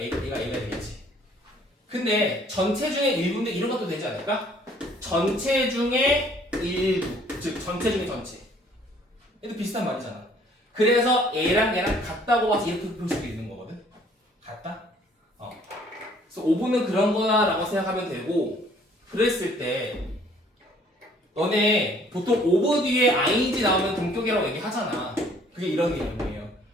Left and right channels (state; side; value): normal; both; correlation 0.59